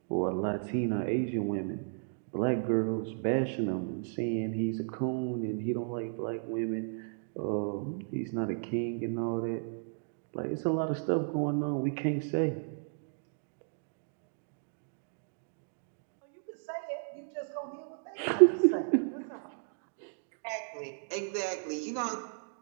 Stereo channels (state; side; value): silent; left; digital silence